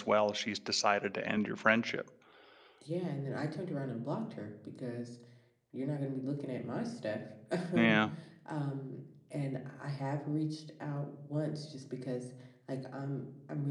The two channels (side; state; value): both; identical; correlation 1.00